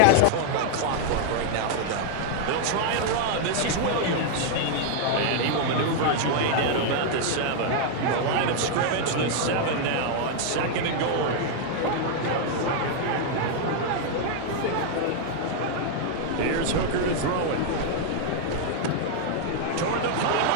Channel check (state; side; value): different; both; correlation 0.00